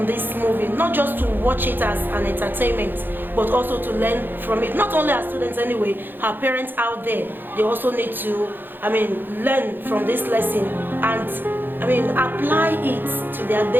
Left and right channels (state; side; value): late; left; 0.095 ms